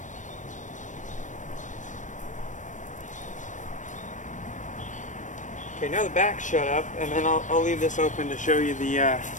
Okay, now the back's shut up, and then I'll leave this open to show you the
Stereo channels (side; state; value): right; late; 0.36 ms